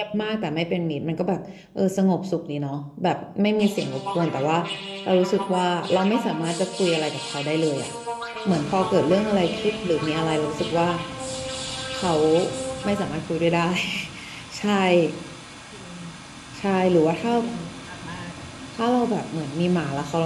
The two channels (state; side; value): identical; both; correlation 1.00